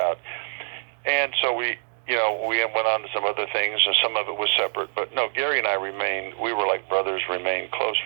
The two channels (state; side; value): silent; left; digital silence